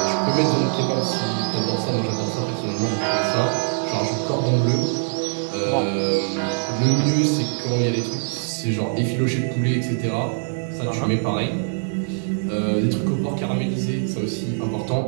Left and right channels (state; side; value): silent; left; 64 dB below the other